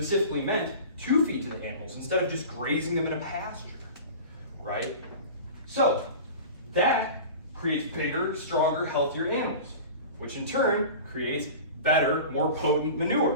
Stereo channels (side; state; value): both; inverted; correlation -0.36